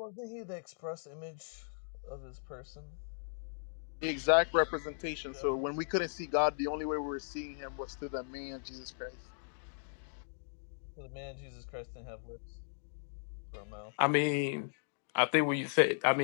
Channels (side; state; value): right; silent; digital silence